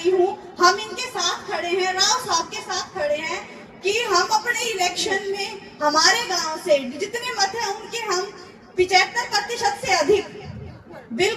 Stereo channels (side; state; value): both; identical; correlation 1.00